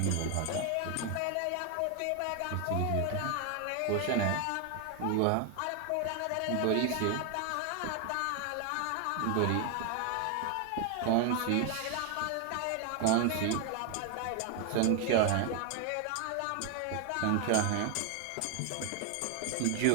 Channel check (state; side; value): different; both; correlation 0.01